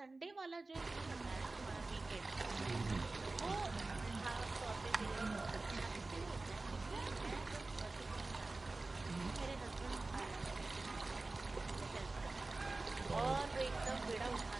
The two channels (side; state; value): left; quieter; 3.3 dB